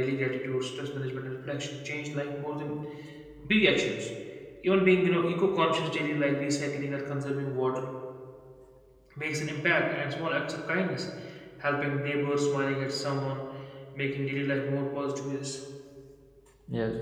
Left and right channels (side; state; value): both; identical; correlation 1.00